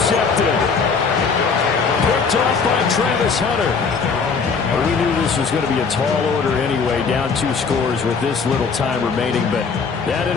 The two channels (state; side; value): quieter; right; 5.3 dB